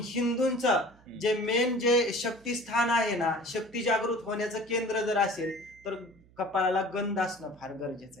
जे मेन जे शक्तिस्थान आहे ना, शक्ती जागृत होण्याचं केंद्र जर असेल तर कपाळाला गंध असणं फार गरजेचं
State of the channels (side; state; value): right; noise; hum, 27 dB below the sound